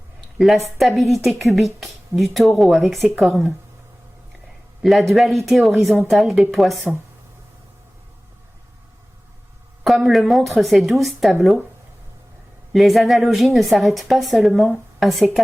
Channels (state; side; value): normal; both; correlation 0.98